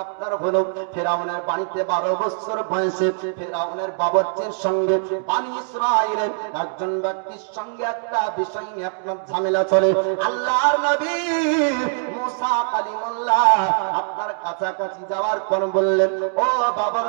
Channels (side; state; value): left; silent; digital silence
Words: আপনার হলো, ফেরাউনের বাড়িতে 12 বছর বয়সে ফেরাউনের বাবরচির সঙ্গে বনি ইসরাঈলের একজন ব্যক্তির সঙ্গে একটা বিষয় নিয়ে আপনার ঝামেলা চলে। আল্লাহর নবী মুসা কালিমুল্লাহ আপনার কাছাকাছি যাওয়ার পর বললেন, ও